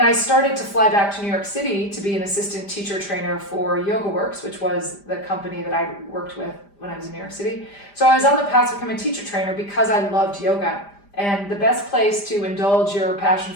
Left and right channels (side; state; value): right; late; 5.0 ms